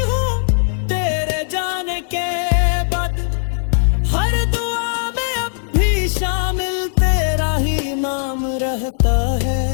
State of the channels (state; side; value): silent; right; digital silence